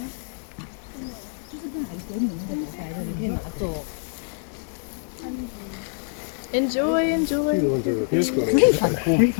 Enjoy, enjoy. The ones over here's going to Really get fun. it. Really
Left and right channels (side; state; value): right; silent; digital silence